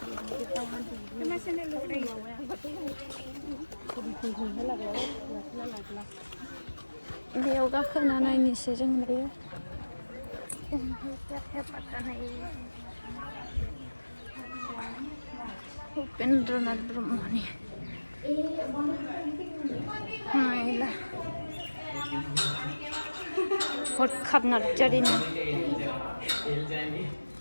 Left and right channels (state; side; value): inverted; both; correlation -1.00